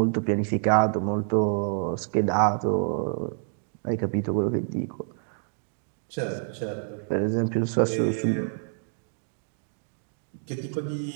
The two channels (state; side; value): silent; left; digital silence